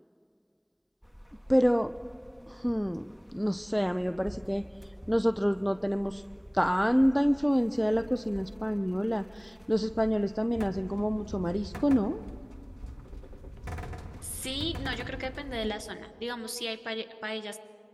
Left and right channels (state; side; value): identical; both; correlation 1.00